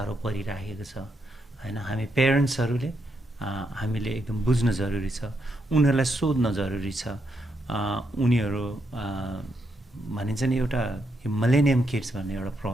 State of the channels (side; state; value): both; normal; correlation 0.80